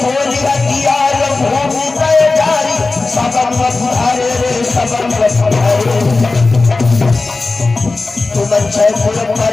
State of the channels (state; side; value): quieter; right; 3.6 dB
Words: हथियार भूमि गए जारी, सबन बधारे रे सबन बधारे। तुम छैपुर पर